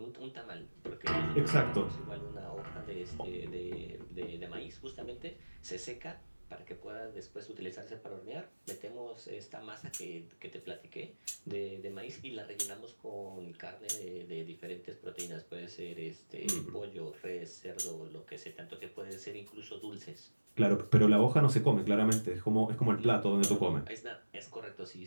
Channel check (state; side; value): inverted; both; correlation -1.00